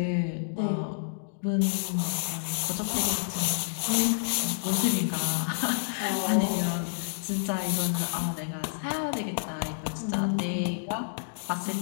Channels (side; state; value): right; silent; digital silence